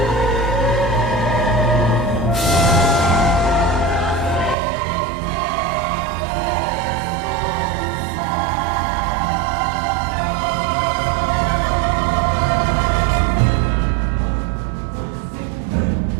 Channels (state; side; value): drops out; left; at 4.5 s